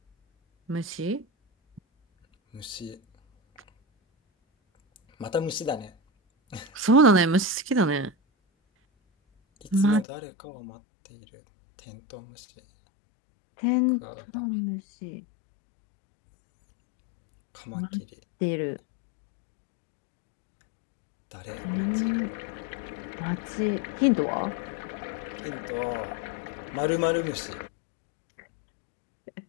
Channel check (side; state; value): right; drops out; at 10.1 s